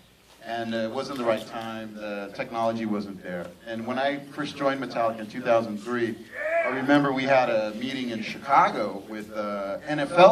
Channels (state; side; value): identical; both; correlation 1.00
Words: And it wasn't the right time, the technology wasn't there. And when I first joined Metallica in 2003, I remember we had a meeting in Chicago with